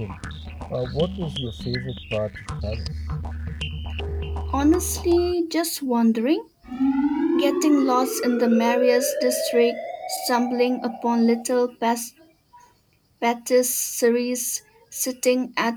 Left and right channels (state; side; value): identical; both; correlation 1.00